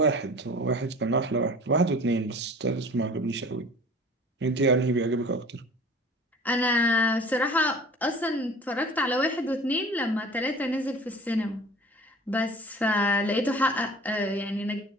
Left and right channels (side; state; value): both; normal; correlation 0.44